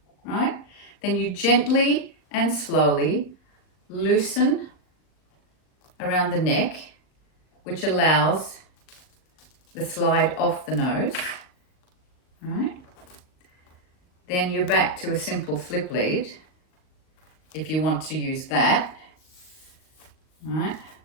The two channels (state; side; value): late; right; 39 ms